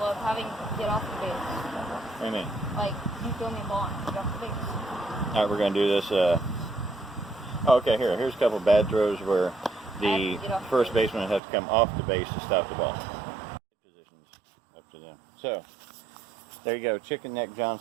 of having to get off the base. What do you mean? Like, you throw me a ball and get off the base. All right, we're going to do this. Okay, here's a couple of bad throws where the first baseman has to come off the base to stop the ball. Positions up to them. So, there you go. Chicken Neck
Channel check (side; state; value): left; drops out; at 11.4 s